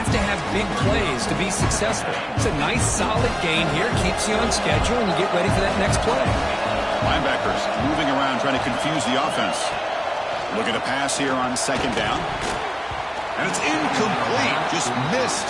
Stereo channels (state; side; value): identical; both; correlation 1.00